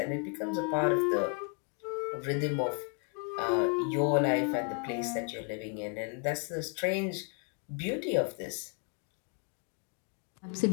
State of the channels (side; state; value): right; quieter; 38.4 dB